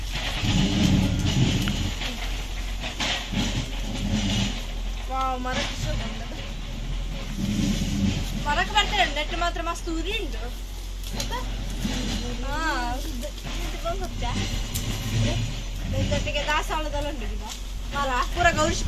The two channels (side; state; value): both; identical; correlation 1.00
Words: ಮರಕ್ಕೆ ಬರ್ತಾರೆ ನೆಟ್ಟು ಮಾತ್ರ ಮಸ್ತ್ ಉರಿ ಉಂಟು ದಾಸವಾಳದಲ್ಲಿ ಉಂಟು ಮರ ಪೂರ ಗೌರಿಶ್